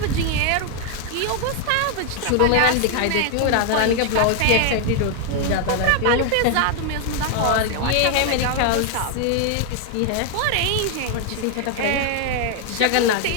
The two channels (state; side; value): different; both; correlation 0.00